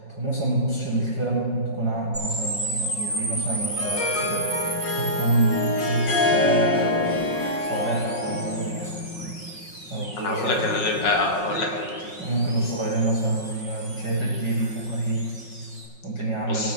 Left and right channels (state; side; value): late; right; 5.5 ms